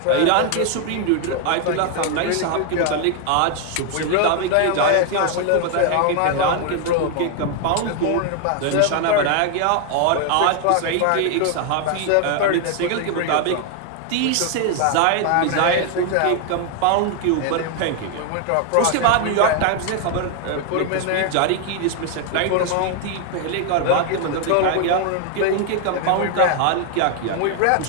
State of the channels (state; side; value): different; both; correlation 0.00